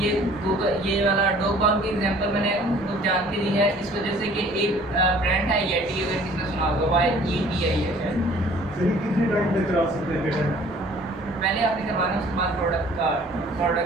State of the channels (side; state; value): both; normal; correlation 0.53